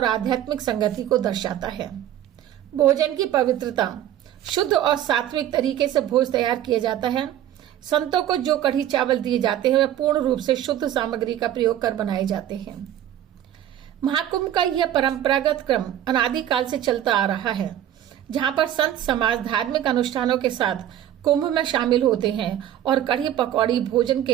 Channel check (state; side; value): quieter; left; 11.5 dB